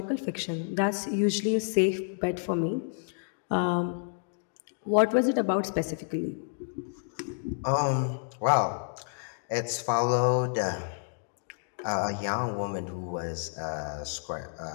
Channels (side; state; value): right; silent; digital silence